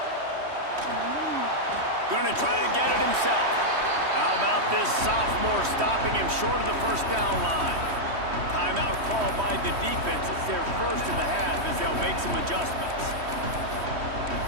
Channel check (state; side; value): late; left; 3.1 ms